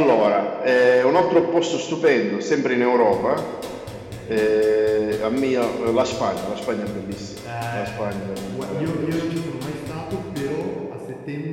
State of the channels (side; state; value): both; identical; correlation 1.00